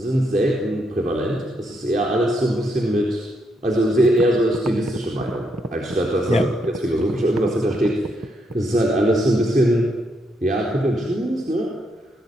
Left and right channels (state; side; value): normal; both; correlation 0.77